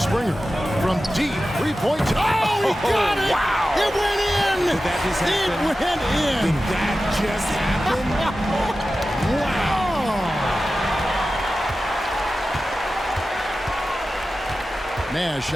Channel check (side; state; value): both; normal; correlation 0.94